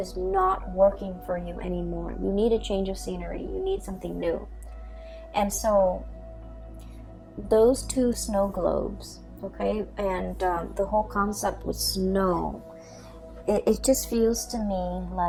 not working for you anymore. You need a change of scenery. You need something new. And so those two snow globes, okay, and the whole concept with snow, it just feels to me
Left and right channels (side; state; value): both; identical; correlation 1.00